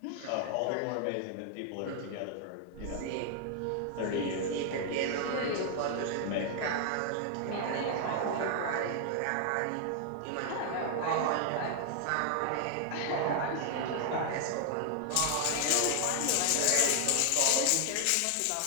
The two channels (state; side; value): different; both; correlation 0.00